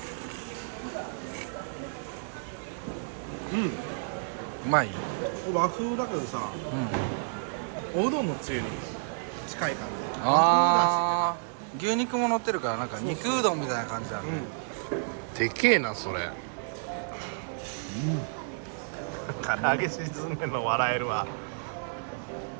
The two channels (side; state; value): left; silent; 57 dB below the other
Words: うまい。和風だけどさ、おうどんのつゆに近い感じ。ああ牛肉も乗ってるからなんか肉うどんみたいな感じだね。でけえなそれ。唐揚げ沈んでるの笑えるわ。